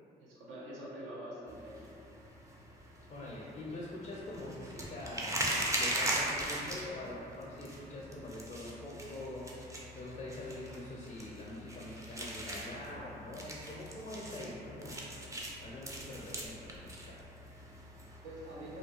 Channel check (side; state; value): both; normal; correlation 0.16